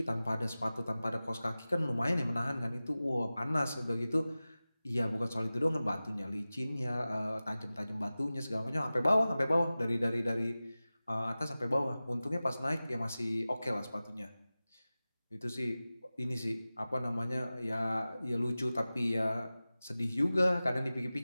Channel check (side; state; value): both; inverted; correlation -0.96